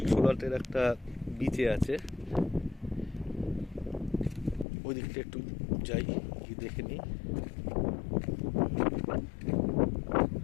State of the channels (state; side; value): drops out; right; at 4.7 s